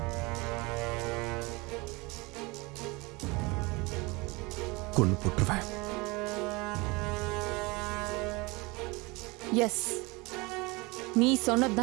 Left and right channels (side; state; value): left; quieter; 25.2 dB